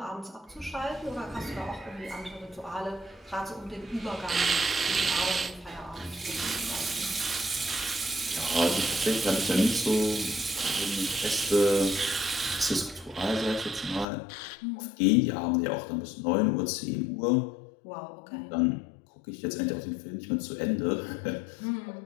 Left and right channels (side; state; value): right; drops out; at 14.1 s